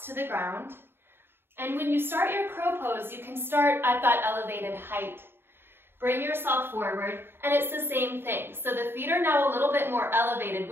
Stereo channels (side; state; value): left; late; 0.11 ms